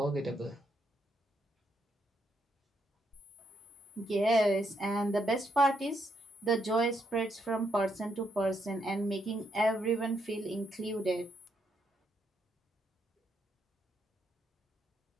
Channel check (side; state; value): both; normal; correlation 0.77